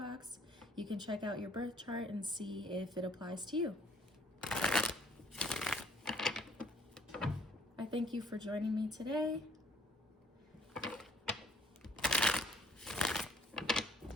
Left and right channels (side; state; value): both; normal; correlation 0.61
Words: You can check out your birth chart and see if it applies to you. I thank you for joining me today.